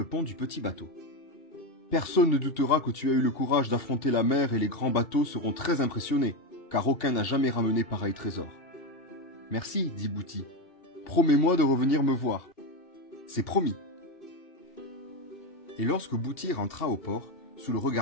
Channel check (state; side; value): late; right; 2.8 ms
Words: pont du petit bateau. « Personne ne doutera que tu as eu le courage d'affronter la mer et les grands bateaux seront très impressionnés, car aucun n'a jamais ramené pareil trésor. »« Merci, dit Bouti. Promets-moi de revenir me voir. »« C'est promis. » Et lorsque Bouti rentra au port, sous le